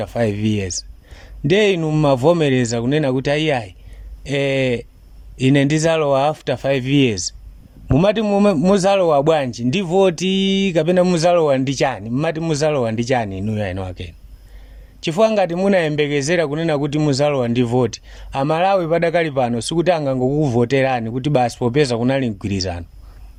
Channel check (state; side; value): identical; both; correlation 1.00